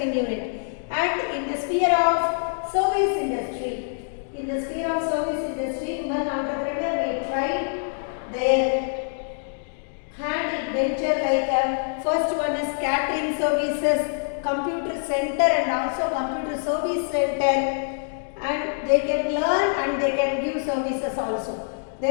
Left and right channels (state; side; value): silent; right; digital silence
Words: unit. And in the sphere of service industry, in the sphere of service industry, women entrepreneur may try their hand in venture like first one is catering services, computer center and also computer service center, and they can learn and they can give services also.